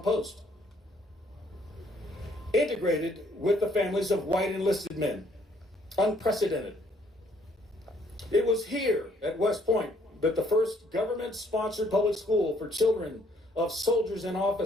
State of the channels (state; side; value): normal; both; correlation 0.65